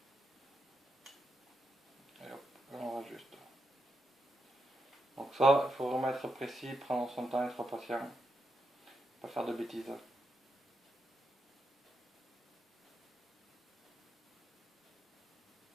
Et hop, on rajuste. Donc ça, il faut vraiment être précis, prendre son temps, être patient. Pas faire de bêtises.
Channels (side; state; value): both; normal; correlation 0.84